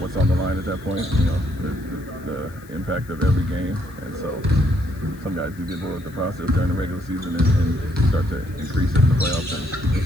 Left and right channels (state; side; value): noise; left; hiss, 26 dB below the sound